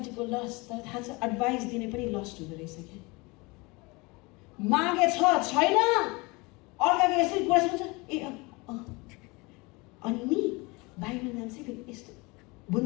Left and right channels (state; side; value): quieter; right; 25.6 dB